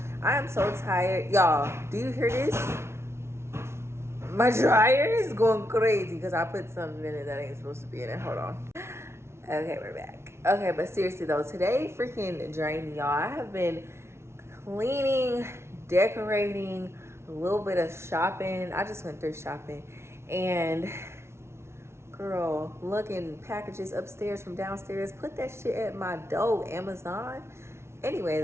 I am so tired. Y'all, do you hear this? My dryer is going crazy because I put something in it that ain't supposed to be in it. Hold on. Okay, we're back. Okay, but seriously though, today freaking drained me, y'all. I have been cleaning, decorating, a little bit of shopping. I just went thrift shopping, and girl, looking packages upstairs from downstairs. Put that shit at my door, Amazon. Anyway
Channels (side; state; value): left; late; 0.13 ms